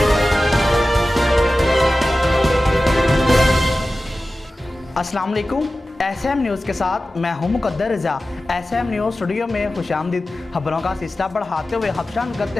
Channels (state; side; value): normal; both; correlation 0.95